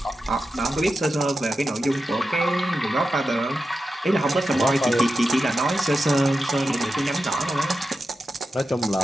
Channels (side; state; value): both; normal; correlation 0.91